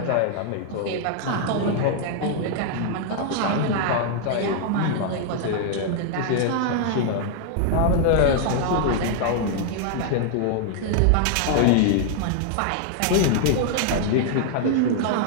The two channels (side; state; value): both; different; correlation 0.00